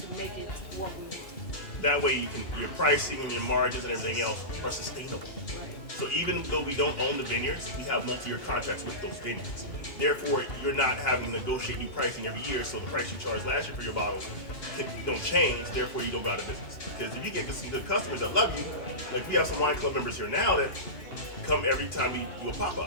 make it what we want. That way your pricing and your margins and everything else are sustainable. Right. So even though we don't own the vineyards, we have multi-year contracts with those vineyards. Therefore, you're not having to negotiate new pricing every year, so the price you charged last year for your bottle don't change, therefore you don't go out of business. Because if you get some good customers that love you, like we have some wine club members here now that come every time we do a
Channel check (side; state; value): right; late; 2.8 ms